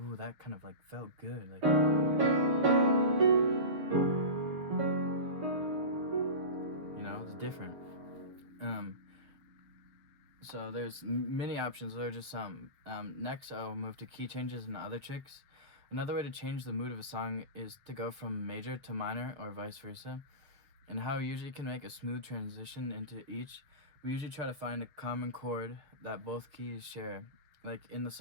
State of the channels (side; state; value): left; late; 7.1 ms